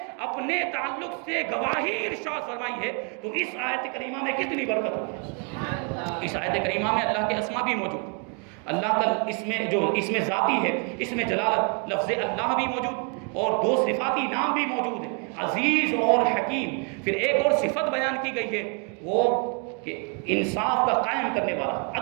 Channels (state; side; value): quieter; left; 36.4 dB